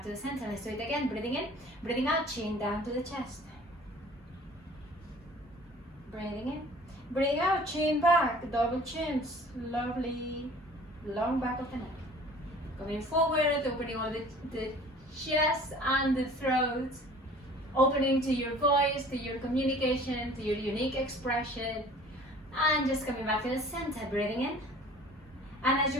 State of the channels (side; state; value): both; normal; correlation 0.48